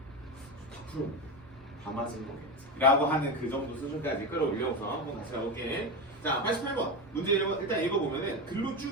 다 풀어. 다 맞은 거겠지. 라고 하는 그 정도 수준까지 끌어올려서 한번 다시 가볼게. 자, 88번 문제 일단 읽어보면은 글로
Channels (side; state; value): both; normal; correlation 0.17